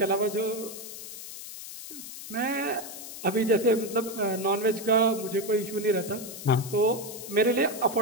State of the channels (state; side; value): noise; left; hiss, 11 dB below the sound